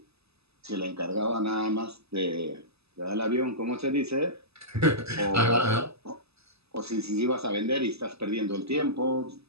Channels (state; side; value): late; left; 0.79 ms